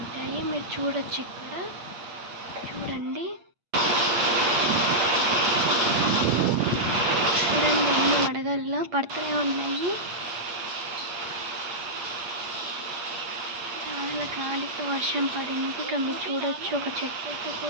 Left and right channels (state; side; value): late; left; 8.5 ms